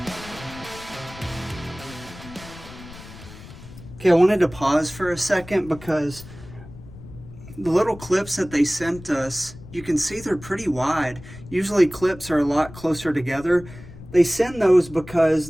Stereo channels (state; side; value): noise; left; rumble, 17 dB below the sound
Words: Okay, I wanted to pause for a second because the little clips that they sent us, you can see they're pretty wide. Usually clips are a lot closer together. They send those